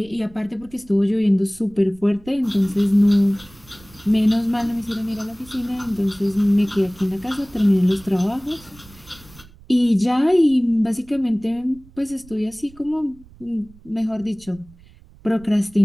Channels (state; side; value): noise; right; rumble, 24 dB below the sound